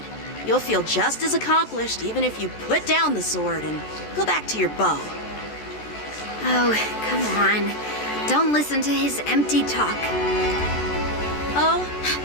you'll feel just as accomplished even if you put down the sword and go back to your bow. Oh, come on. Don't listen to his empty talk. Oh,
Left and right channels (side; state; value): right; late; 14 ms